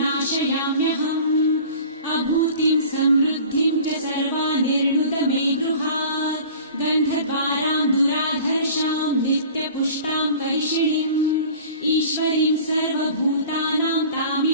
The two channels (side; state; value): both; inverted; correlation -0.43